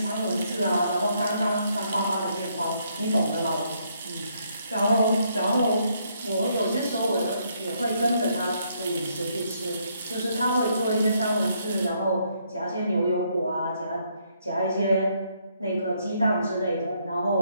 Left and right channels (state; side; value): inverted; both; correlation -0.72